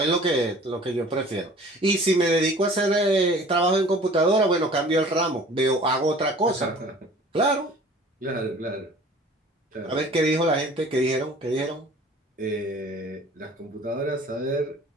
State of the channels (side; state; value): both; normal; correlation 0.47